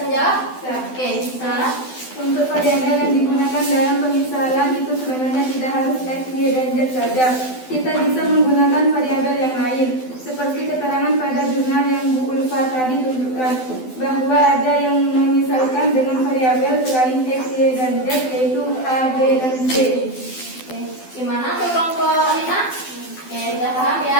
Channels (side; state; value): right; late; 12 ms